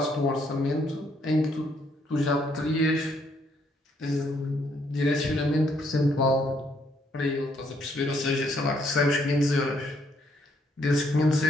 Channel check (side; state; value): both; normal; correlation 0.71